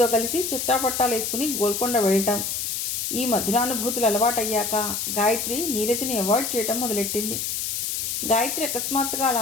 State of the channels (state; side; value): noise; left; hiss, 2 dB below the sound